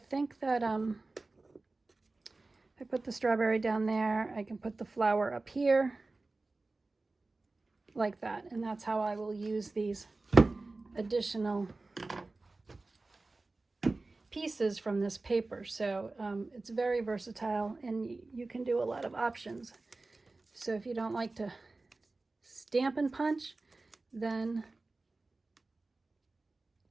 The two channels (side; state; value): left; quieter; 3.3 dB